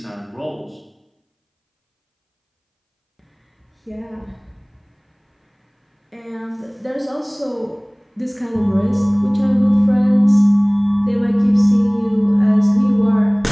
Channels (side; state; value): both; identical; correlation 1.00